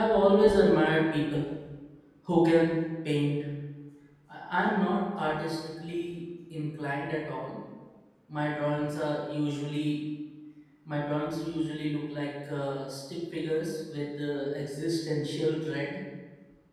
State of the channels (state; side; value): identical; both; correlation 1.00